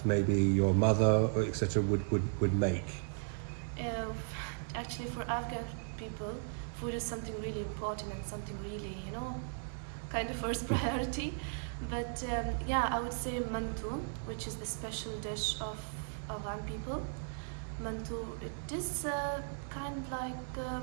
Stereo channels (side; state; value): left; silent; digital silence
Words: maybe your mother or etc. would make? Actually, for Afghan people, food is something really important and something really, kind of first priority. But I would say mantu, which is the special dish of Afghan people. Mantu, it is kind of like